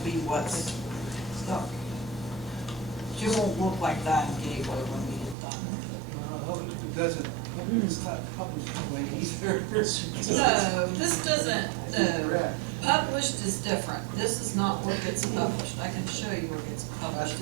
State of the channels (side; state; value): left; drops out; at 5.4 s